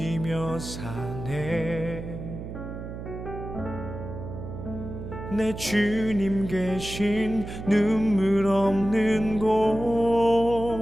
사네. 내 주님 계신 눈물 없는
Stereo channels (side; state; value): right; noise; hum, 9 dB below the sound